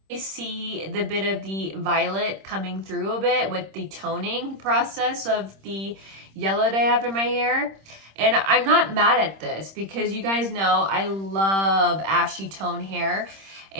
I see the bit of the violet coming through a bit with the toning process of the yellow that I have in my hair. And I'm not mad at this, because you guys know I love ashy tone hair.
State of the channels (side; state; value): left; late; 26 ms